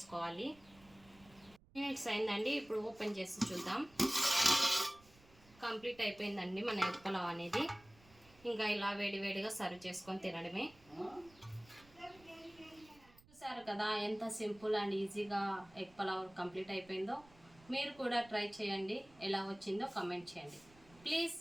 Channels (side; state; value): right; noise; rumble, 26 dB below the sound